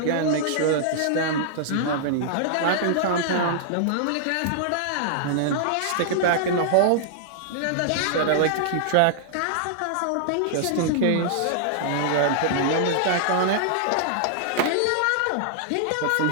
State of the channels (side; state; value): both; different; correlation -0.01